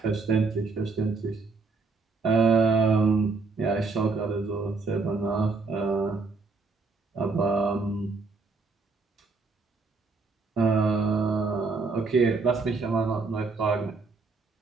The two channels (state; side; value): quieter; left; 4.2 dB